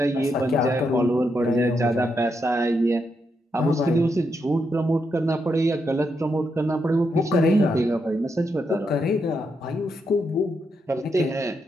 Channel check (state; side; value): normal; both; correlation 0.81